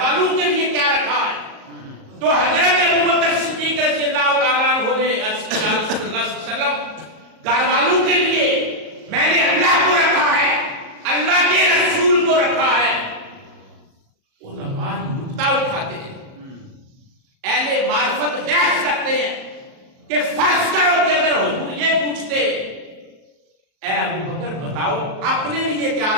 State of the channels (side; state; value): left; late; 37 ms